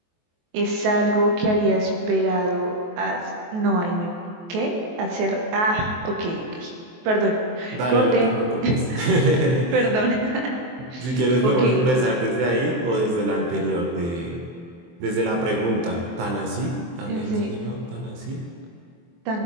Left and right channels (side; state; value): left; late; 23 ms